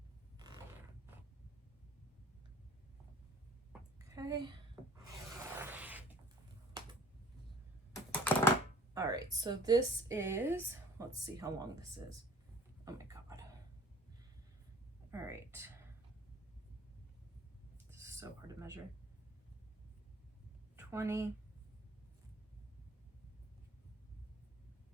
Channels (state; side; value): normal; both; correlation 0.51